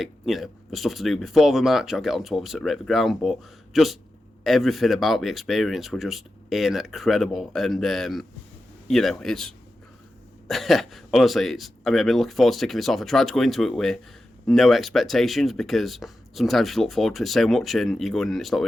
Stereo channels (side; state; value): both; normal; correlation 0.91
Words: you know, the stuff to do before the match, I'll get on to obviously rate the ground, but just everything about the experience were just incredible. And you know, it's honestly, I mean, I've been looking forward to taking this off. I tried to go into it with no expectations, because sometimes you look forward to it so much and you go in and it's not what